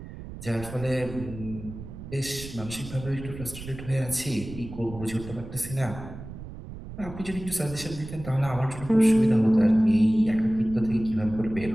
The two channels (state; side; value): noise; right; rumble, 12 dB below the sound